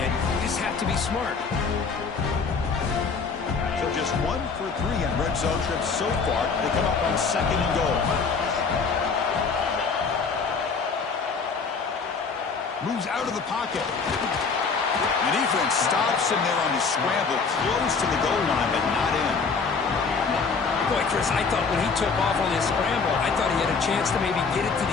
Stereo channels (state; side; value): quieter; right; 5.0 dB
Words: it. You just have to be smart. So just 1 for 3 in red zone trips so far. They come up on 2nd and goal. Moves out of the pocket. The defense stops him there on the scramble, close to the goal line, but not in. Boy, Chris, I thought when he took off on his scramble, I thought he had a chance to maybe get it to